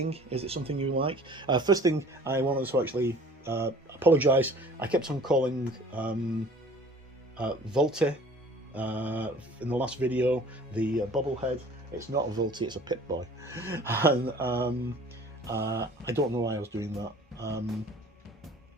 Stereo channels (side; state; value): both; normal; correlation 0.48